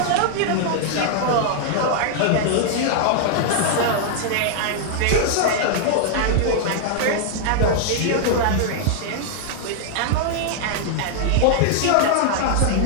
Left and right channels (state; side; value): different; both; correlation -0.01